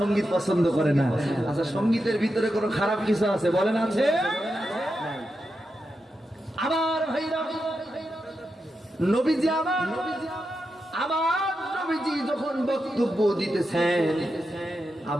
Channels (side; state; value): both; normal; correlation 0.88